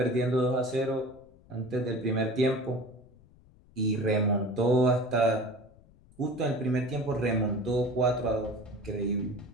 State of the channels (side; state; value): left; noise; rumble, 27 dB below the sound